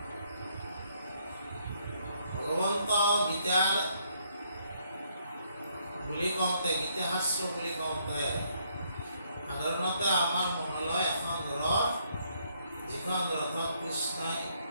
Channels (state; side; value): inverted; both; correlation -0.71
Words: ভগৱন্ত গীতাৰ বুলি কওঁতে গীতা শাস্ত্ৰ বুলি কওঁতে সাধাৰণতে আমাৰ মনলৈ এখন ৰথ যিখন ৰথত কৃষ্ণই